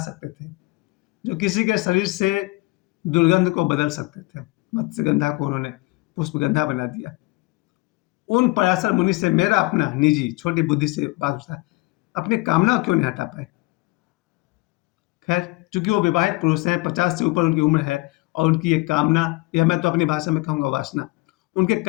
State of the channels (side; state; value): right; quieter; 23.1 dB